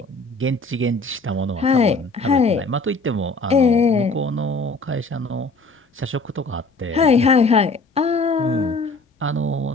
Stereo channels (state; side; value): quieter; right; 3.1 dB